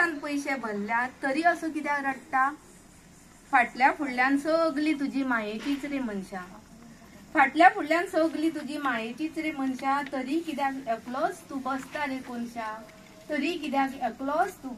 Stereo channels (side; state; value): both; identical; correlation 1.00